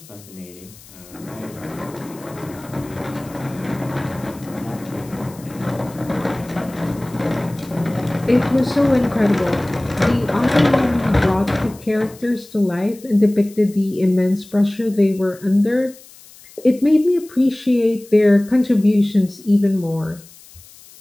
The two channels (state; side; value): noise; left; hiss, 22 dB below the sound